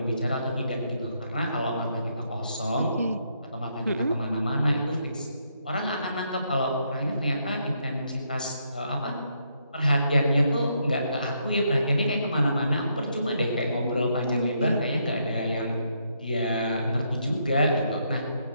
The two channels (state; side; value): inverted; both; correlation -0.76